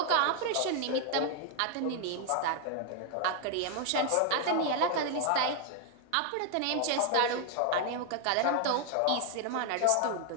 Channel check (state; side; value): different; both; correlation 0.00